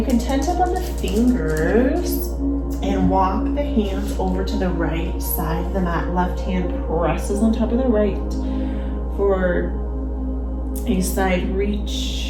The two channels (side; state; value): both; identical; correlation 1.00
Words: can tent up on the fingers and walk the hands over to the right side of the mat. Left hand presses on top of the right for a side